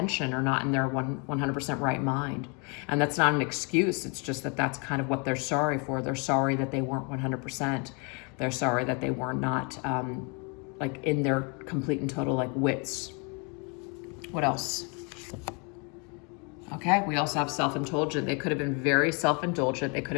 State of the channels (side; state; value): right; quieter; 33.5 dB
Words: or not in their 100% right mind. And that's not an excuse. It's just that that's kind of what they're sorry for. They're sorry that they weren't 100%. They're sorry that they were not like in their complete and total like wits. What else? Okay, we also have self-indulgent. They could have been very self-indulgent. They could